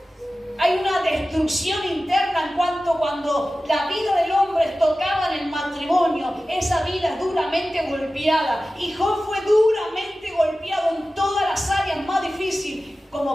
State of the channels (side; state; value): both; normal; correlation 0.95